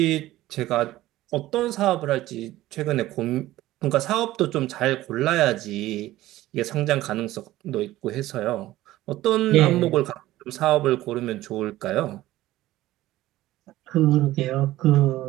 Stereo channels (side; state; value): left; quieter; 16.0 dB